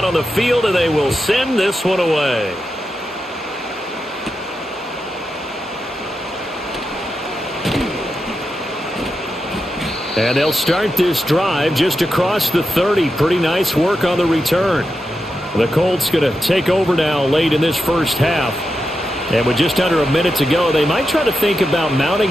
on the field, and they will send this one away. And they'll start this drive just across the 30. Pretty nice work on the return. The Colts going to take over now late in this first half. And with just under a minute to go, they might try to think about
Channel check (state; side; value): normal; both; correlation 0.88